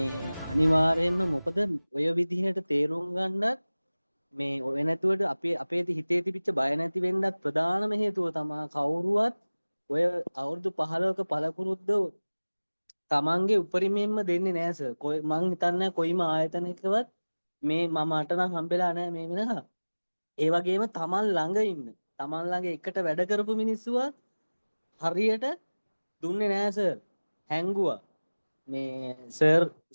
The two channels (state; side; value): inverted; both; correlation -1.00